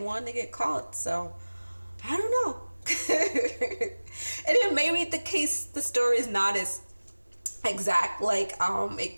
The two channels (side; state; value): both; inverted; correlation -1.00